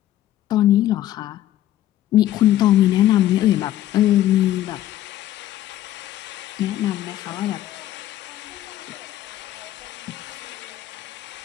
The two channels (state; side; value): quieter; right; 13.2 dB